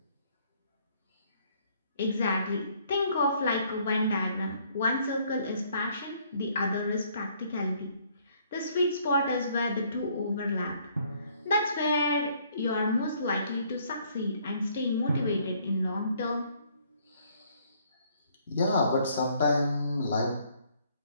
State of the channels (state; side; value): inverted; both; correlation -0.64